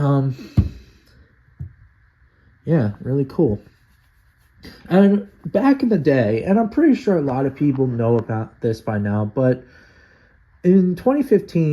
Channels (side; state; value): both; identical; correlation 1.00